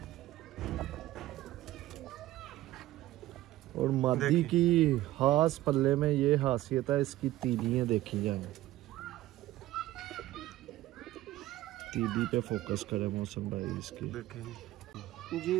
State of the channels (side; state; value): left; quieter; 15.6 dB